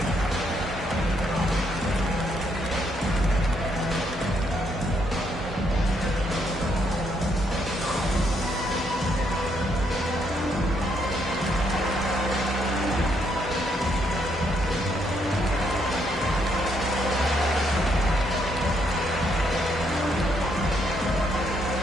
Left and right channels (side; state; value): both; normal; correlation 0.74